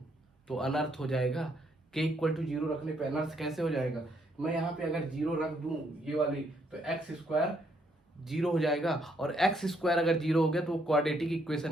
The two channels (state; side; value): normal; both; correlation 0.72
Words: तो अनर्थ हो जाएगा। k = 0 रखने पे अनर्थ कैसे हो जाएगा, मैं यहाँ पे अगर 0 रख दूं ये वाली, तो x² 0 हो जाएगा, और x² अगर 0 हो गया तो वो क्वाड्रेटिक